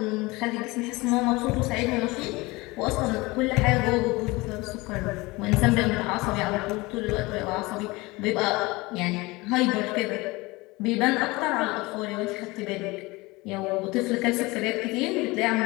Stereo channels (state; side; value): quieter; right; 22.8 dB